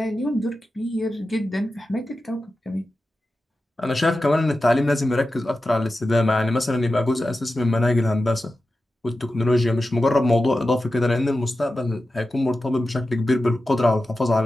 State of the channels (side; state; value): both; normal; correlation 0.93